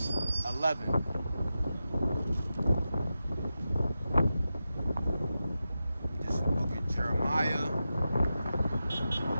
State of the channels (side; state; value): both; inverted; correlation -0.91